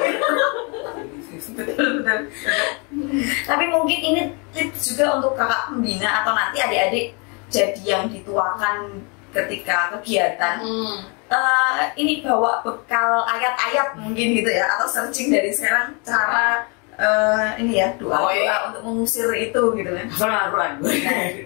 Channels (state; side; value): quieter; right; 33.0 dB